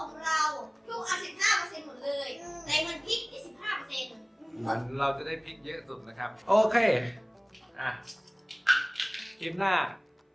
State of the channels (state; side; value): identical; both; correlation 1.00